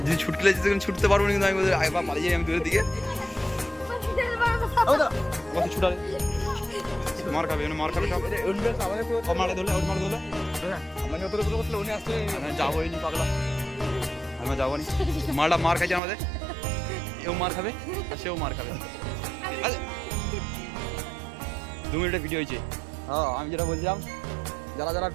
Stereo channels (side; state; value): left; drops out; at 16.0 s